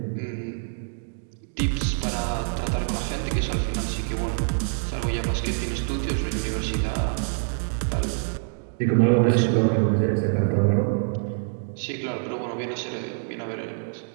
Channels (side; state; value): left; silent; digital silence